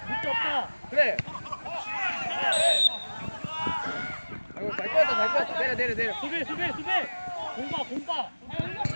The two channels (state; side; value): inverted; both; correlation -1.00